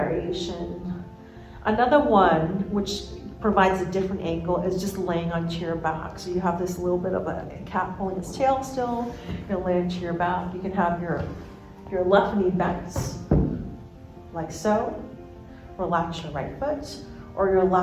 Another one, which provides a different angle, is just laying onto your back. So you have this little bit of a cat pulling its tail still. You'll lay onto your back. You can have your left knee bent, like so. Relax your right foot, or your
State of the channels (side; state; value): both; identical; correlation 1.00